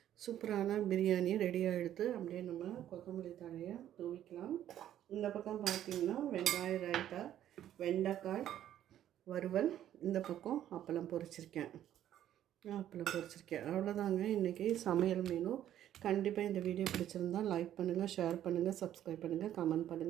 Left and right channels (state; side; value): quieter; left; 11.5 dB